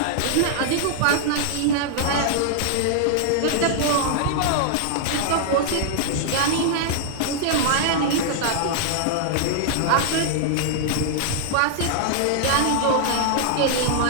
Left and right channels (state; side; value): different; both; correlation -0.01